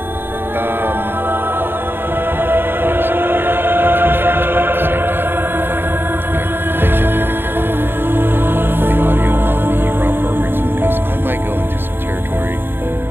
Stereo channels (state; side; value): late; left; 0.10 ms